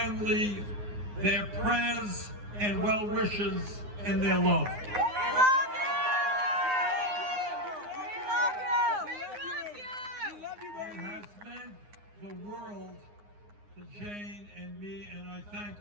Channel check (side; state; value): left; late; 9.6 ms